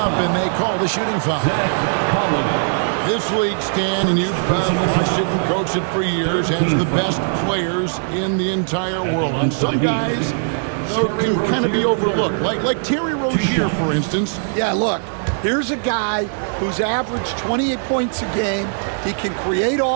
and they call the shooting foul. This league, Stan, and you've watched it and coached it for years, has the best players in the entire world. And some guys can kind of be overlooked, like Terry Rozier, for instance. Yeah, look, Here's a guy who's averaged 28 points a game. He can create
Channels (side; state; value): left; silent; 59 dB below the other